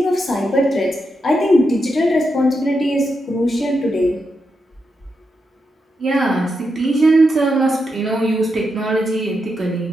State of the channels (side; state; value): both; normal; correlation 0.85